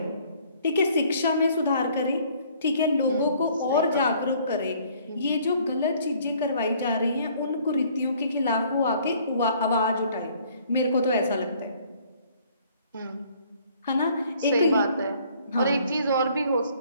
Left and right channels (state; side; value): inverted; both; correlation -0.59